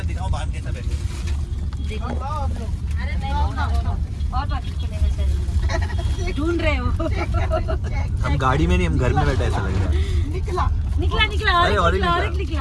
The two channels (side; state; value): both; identical; correlation 1.00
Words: दिखाऊं बांध कैसा बैठे। ढूंढ रहे हो? हम गाड़ी में नहीं, हम घर में बैठे ऐसा लग रहा है। निकला। निकला निकला, और अरे, एक और एक